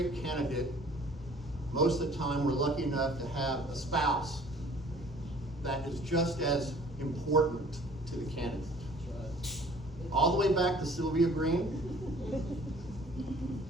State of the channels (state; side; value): normal; both; correlation 0.52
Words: candidate, most of the time we're lucky enough to have a spouse that is just as important to the candidate. All the way back to Sylvia Green.